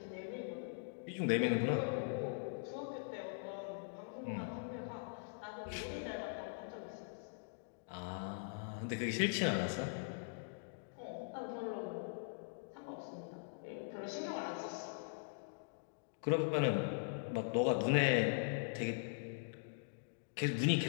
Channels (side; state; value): right; silent; digital silence